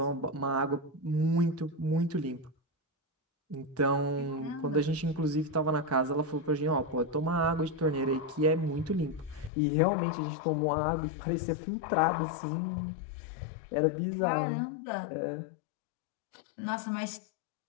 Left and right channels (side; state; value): right; drops out; at 9.5 s